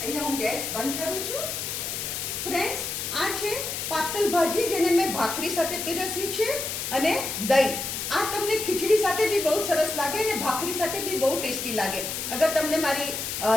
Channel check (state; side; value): noise; left; hiss, 4 dB below the sound